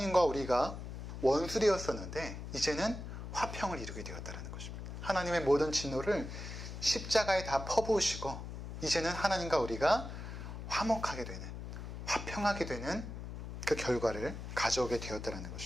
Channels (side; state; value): left; noise; hum, 8 dB below the sound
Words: 우리가 원수되었었는데 이제는 화평을 이루게 되었다는 것입니다. 하나님의 모든 진노를 십자가에 다 퍼부으시고 이제는 하나님과 우리가 화목하게 되는, 화평하게 되는 그 결과를 가져오게 되었다는